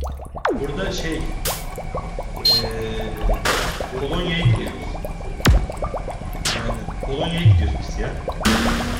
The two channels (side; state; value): both; identical; correlation 1.00